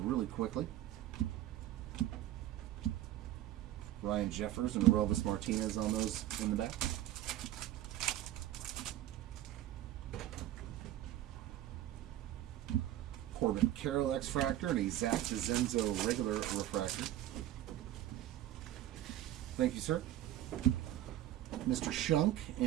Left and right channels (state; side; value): quieter; left; 13.3 dB